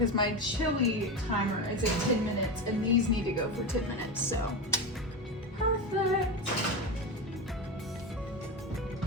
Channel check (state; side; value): normal; both; correlation 0.19